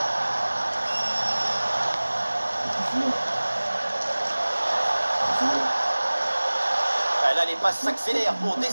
Ah, là, les passes s'accélèrent pour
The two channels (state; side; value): inverted; both; correlation -1.00